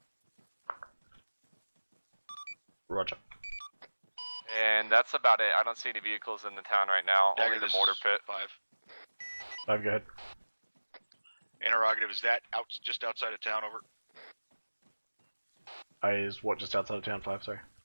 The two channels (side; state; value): both; inverted; correlation -1.00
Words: Roger. And that's about it. I don't see any vehicles in the town right now. Dagger, only the mortar pit. 5. 5, go ahead. Interrogative, is that just outside of town? Over. Is what just outside of town? 5, sorry.